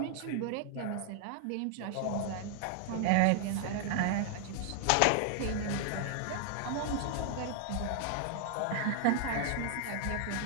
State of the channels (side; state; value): both; different; correlation 0.00